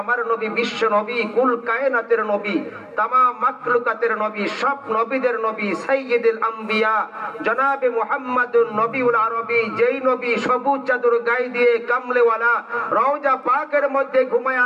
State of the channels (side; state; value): both; identical; correlation 1.00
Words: আমার নবী, বিশ্ব নবী, কুল কায়নাতের নবী, তামাম মাখলুকাতের নবী, সব নবীদের নবী, সাইয়্যিদুল আম্বিয়া জনাবে মুহাম্মাদুন নবীউল আরবী, যেই নবী সবুজ চাদর গায়ে দিয়ে কামলেওয়ালা রওজা পাকের মধ্যে ঘুমায়